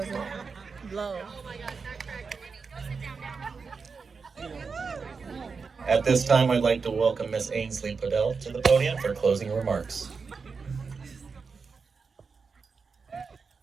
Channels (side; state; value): left; quieter; 5.0 dB